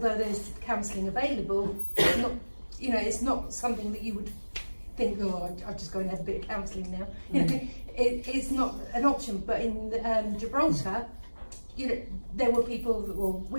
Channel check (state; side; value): inverted; both; correlation -1.00